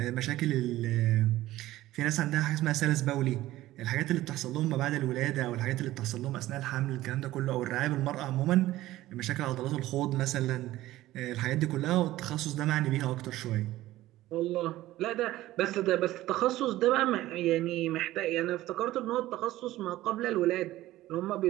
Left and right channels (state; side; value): quieter; left; 15.9 dB